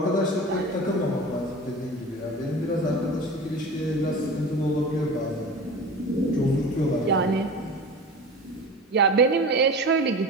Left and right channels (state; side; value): normal; both; correlation 0.34